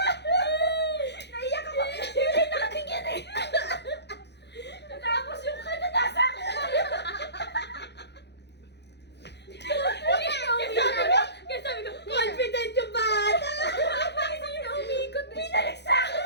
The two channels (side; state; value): right; late; 0.50 ms